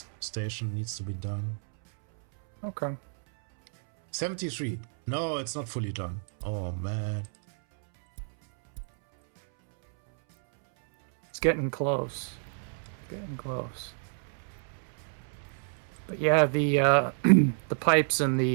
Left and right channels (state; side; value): silent; left; 58 dB below the other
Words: station needs to be done. Okay. 73. No, it's not fully done. Oh, man. It's getting close. Getting close. But yeah, the the pipes and